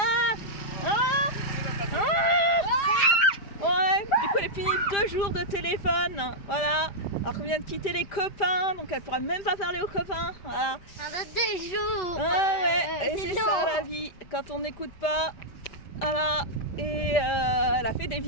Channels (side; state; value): right; late; 5.0 ms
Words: Ouais. Du coup elle a fini 2 jours de téléphone. Voilà. Alors qu'on vient de quitter les copains, donc elle pourra même pas parler aux copains. Voilà. Ça va 2 jours. Et c'est ça la vie. Quand on n'écoute pas. Voilà. Et elle a fait des